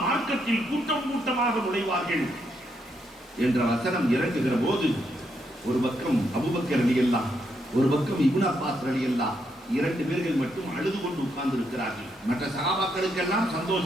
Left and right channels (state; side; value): normal; both; correlation 0.78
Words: மார்க்கத்தில் கூட்டம் கூட்டமாக நுழைவார்கள் என்ற வசனம் இறங்குகிற போது ஒரு பக்கம் அபூபக்கர் ரலியல்லாஹு, ஒரு பக்கம் இப்னு அப்பாஸ் ரலியல்லாஹு, 2 பேர்கள் மட்டும் அழுது கொண்டு உட்கார்ந்து இருக்கிறார்கள். மற்ற சஹாபாக்களுக்கெல்லாம்